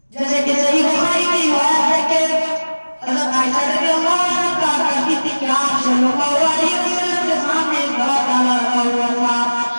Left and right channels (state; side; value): inverted; both; correlation -1.00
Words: جیسے کہ صحیح